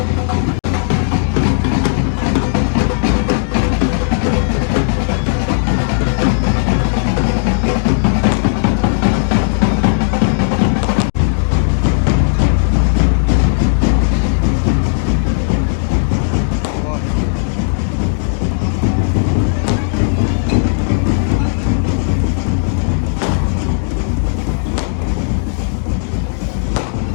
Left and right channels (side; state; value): right; silent; digital silence